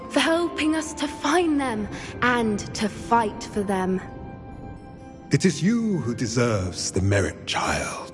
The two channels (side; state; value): both; identical; correlation 1.00